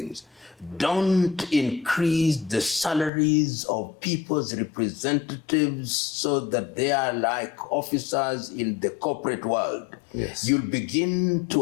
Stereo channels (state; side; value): drops out; right; at 3.1 s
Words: don't increase the salaries of people's representatives so that they are like officers in the corporate world. Yes. You'll begin